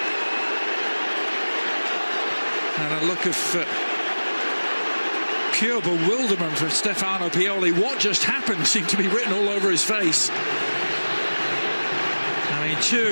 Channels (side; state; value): both; inverted; correlation -1.00